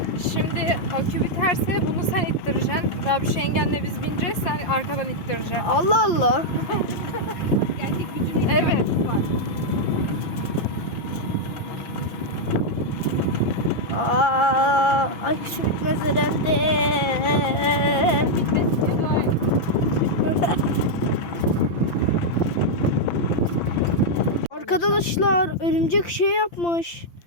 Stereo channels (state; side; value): late; right; 5.8 ms